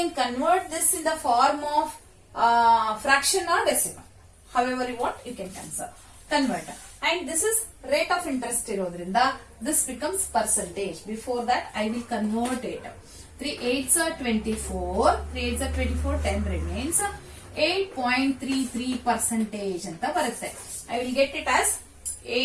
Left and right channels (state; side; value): identical; both; correlation 1.00